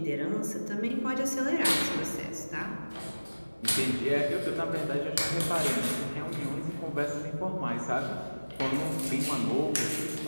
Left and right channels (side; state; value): both; inverted; correlation -1.00